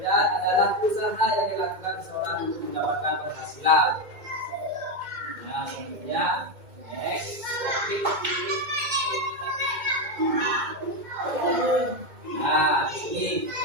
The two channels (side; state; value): left; late; 2.2 ms